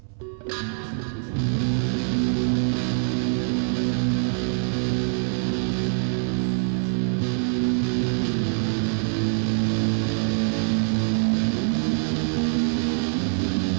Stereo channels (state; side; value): silent; left; 61 dB below the other